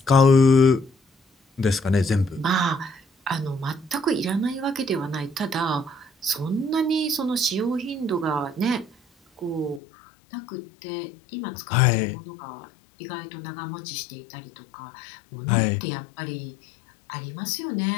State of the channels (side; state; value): right; drops out; at 9.8 s